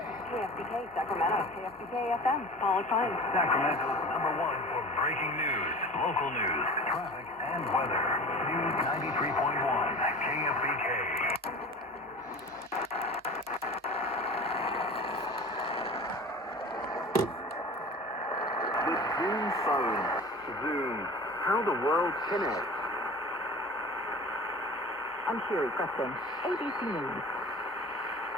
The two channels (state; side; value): normal; both; correlation 0.37